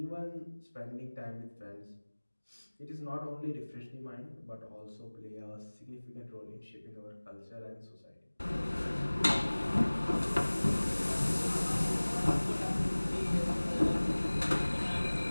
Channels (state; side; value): inverted; both; correlation -1.00